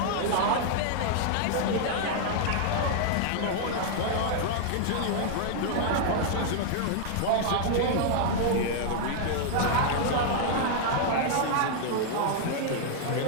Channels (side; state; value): both; different; correlation 0.00